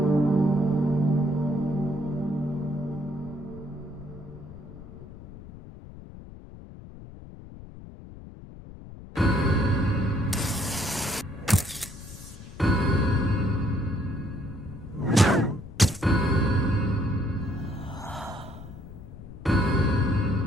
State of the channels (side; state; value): left; noise; rumble, 15 dB below the sound